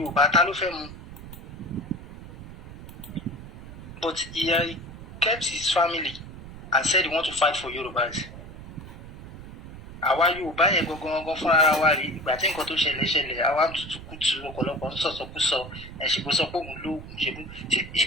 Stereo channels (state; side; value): noise; right; rumble, 14 dB below the sound